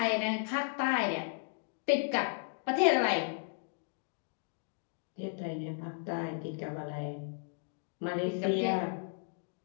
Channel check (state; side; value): silent; right; digital silence